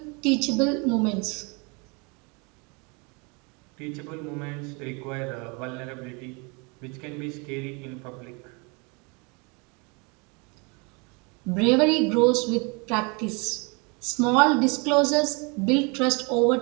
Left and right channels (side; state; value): left; quieter; 31.0 dB